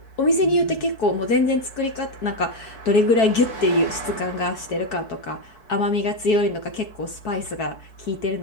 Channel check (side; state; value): right; late; 4.6 ms